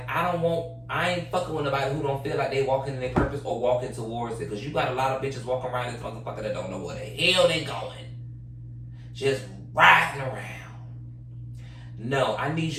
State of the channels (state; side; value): identical; both; correlation 1.00